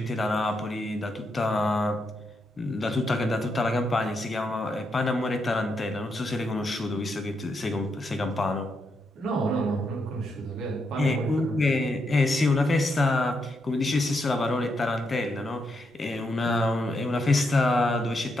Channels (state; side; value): normal; both; correlation 0.81